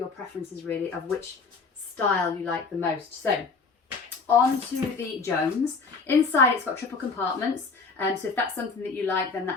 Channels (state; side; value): quieter; right; 4.6 dB